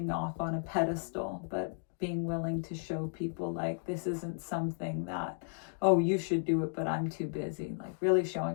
off on a pedestal, but being willing to show people like this isn't something that, oh, you should do it, but I'm too busy. Like really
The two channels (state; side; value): silent; right; digital silence